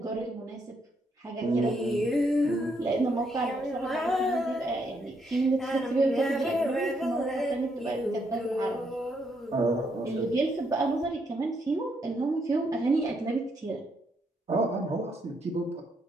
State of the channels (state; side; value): normal; both; correlation 0.76